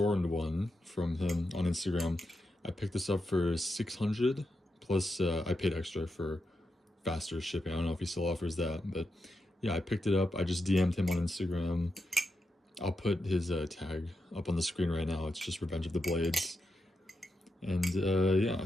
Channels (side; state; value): both; normal; correlation 0.86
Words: one from him on Instagram. I picked this up for 600 plus I paid extra for faster shipping. I don't know if he still offers that, but yeah, I picked it up. I just DM'd him on Instagram. I'll put his tag up on the screen right now. It's just Revenge of the Blades. And yeah,